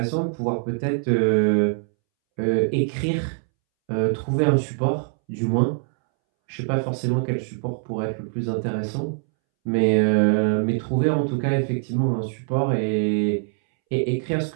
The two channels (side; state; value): left; silent; 63 dB below the other